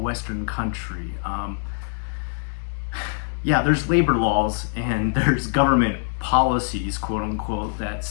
country. Yeah, there's labor laws and there's government policies, quote unquote, that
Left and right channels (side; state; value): right; silent; 61 dB below the other